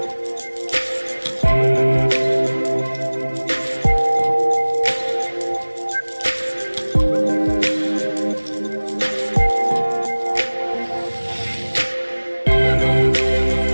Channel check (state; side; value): inverted; both; correlation -1.00